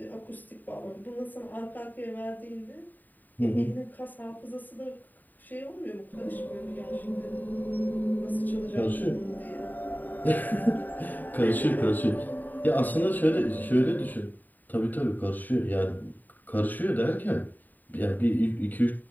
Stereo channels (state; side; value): late; right; 0.087 ms